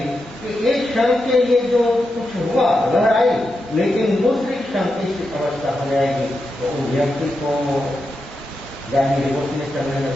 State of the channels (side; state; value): both; normal; correlation 0.87